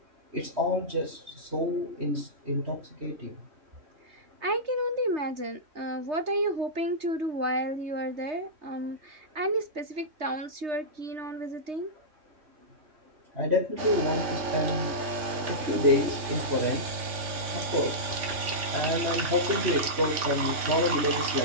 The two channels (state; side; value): late; left; 3.5 ms